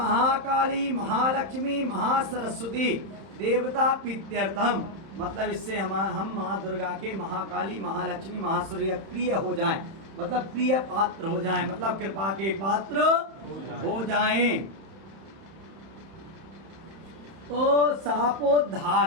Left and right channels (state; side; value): late; left; 31 ms